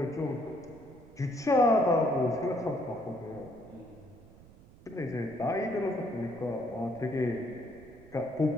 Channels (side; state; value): right; noise; rumble, 22 dB below the sound